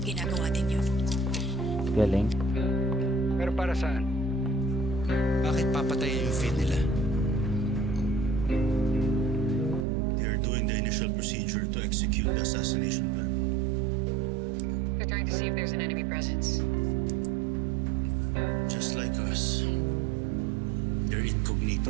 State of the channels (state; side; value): drops out; left; at 9.9 s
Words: Ginagawa din yun. Galing. Pero para saan? Bakit papatayin yung feed nila? They are doing the initial procedure to execute the assassination plan. They're trying to see if there's an enemy presence. Just like us. They're